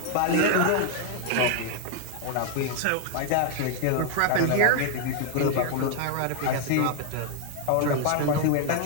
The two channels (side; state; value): both; different; correlation 0.00